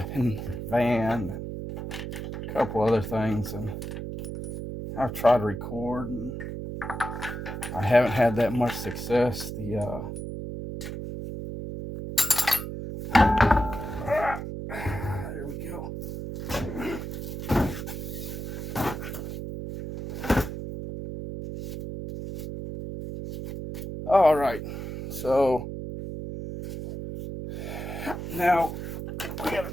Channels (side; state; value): right; noise; hum, 6 dB below the sound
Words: and van and a couple other things, and I've tried to record and I haven't had that much success. There we go. All right, so now we got to